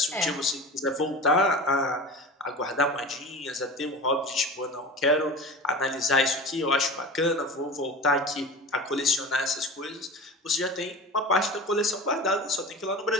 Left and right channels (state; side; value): normal; both; correlation 0.33